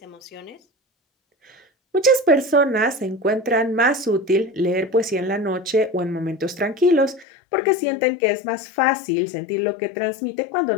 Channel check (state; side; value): drops out; right; at 7.2 s